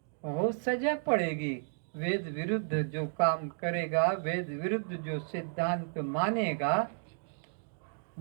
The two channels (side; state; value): left; silent; digital silence